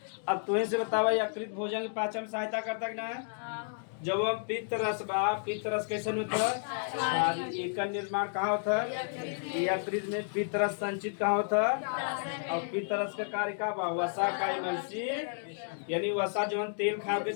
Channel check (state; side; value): silent; right; digital silence